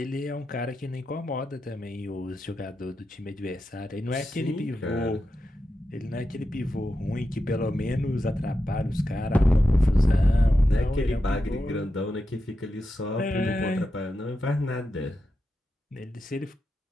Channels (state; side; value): normal; both; correlation 0.89